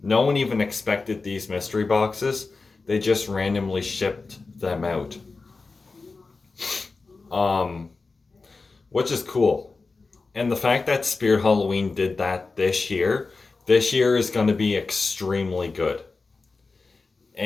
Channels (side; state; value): right; quieter; 4.0 dB